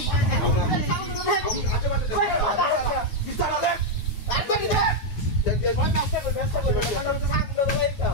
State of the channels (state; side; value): late; right; 9.4 ms